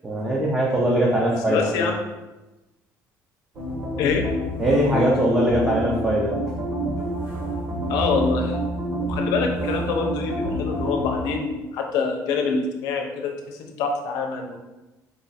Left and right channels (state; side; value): normal; both; correlation 0.59